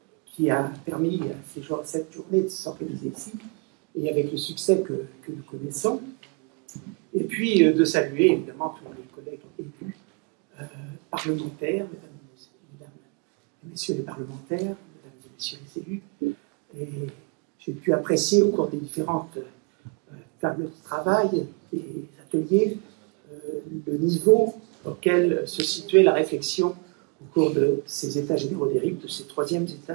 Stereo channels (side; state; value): left; quieter; 32.1 dB